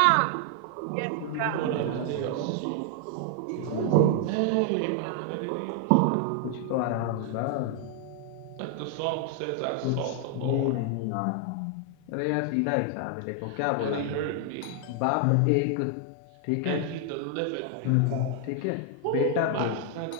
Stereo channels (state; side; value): different; both; correlation 0.00